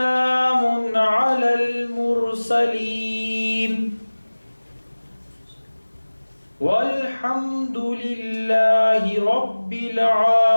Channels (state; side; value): inverted; both; correlation -1.00